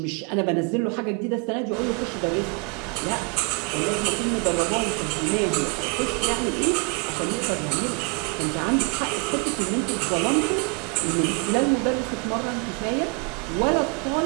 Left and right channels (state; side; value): quieter; left; 30.8 dB